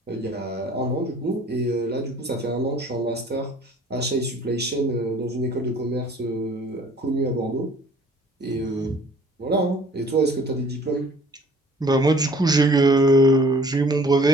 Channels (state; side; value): normal; both; correlation 0.53